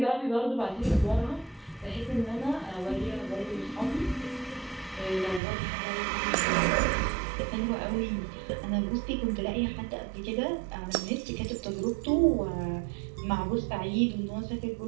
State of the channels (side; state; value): left; drops out; at 5.4 s